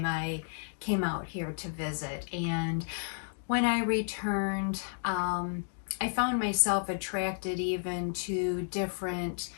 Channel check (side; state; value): right; silent; digital silence